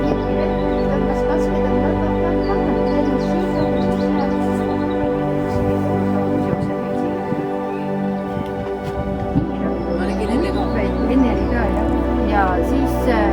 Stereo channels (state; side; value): identical; both; correlation 1.00